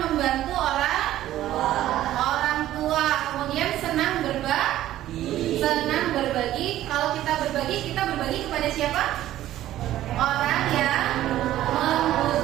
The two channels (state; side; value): quieter; left; 13.6 dB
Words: orang tua. Kemudian senang berbagi. Kalau kita berbagi kepada siapa? Orang yang